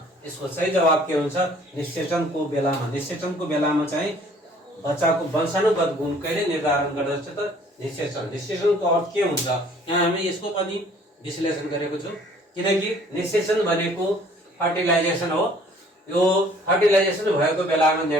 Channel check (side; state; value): both; normal; correlation 0.56